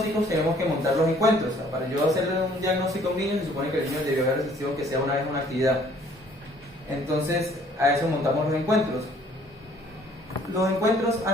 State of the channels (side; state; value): both; normal; correlation 0.58